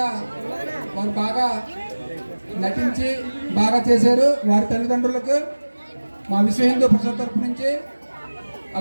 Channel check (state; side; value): inverted; both; correlation -1.00